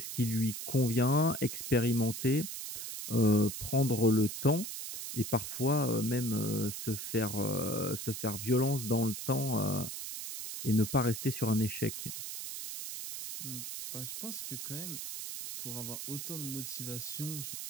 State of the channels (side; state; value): right; noise; hiss, 7 dB below the sound